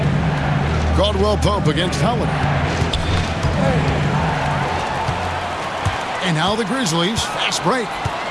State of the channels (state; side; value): identical; both; correlation 1.00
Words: Caldwell Pope against Howard. And now the Grizzlies, fast break.